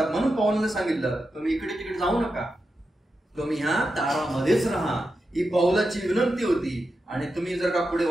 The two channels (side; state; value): both; normal; correlation 0.89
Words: म्हणून पौलाने सांगितलं तुम्ही इकडे तिकडे जाऊ नका, तुम्ही ह्या तारामध्येच राहा. ही पौलाची विनंती होती. आणि तुम्ही जर का पुढे